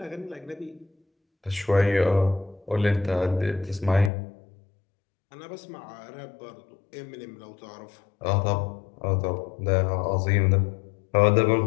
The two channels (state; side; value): drops out; right; at 4.1 s